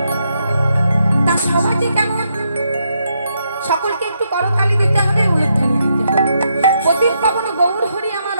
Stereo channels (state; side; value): inverted; both; correlation -0.79